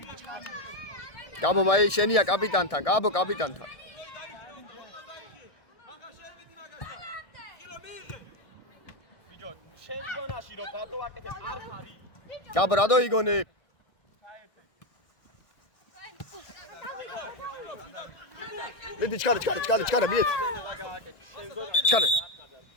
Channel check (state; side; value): late; right; 1.6 ms